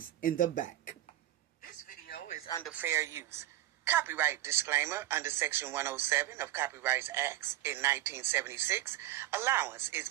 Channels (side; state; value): left; quieter; 14.3 dB